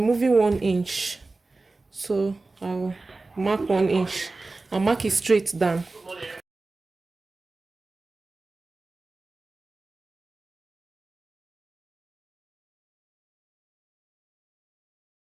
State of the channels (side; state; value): left; quieter; 3.4 dB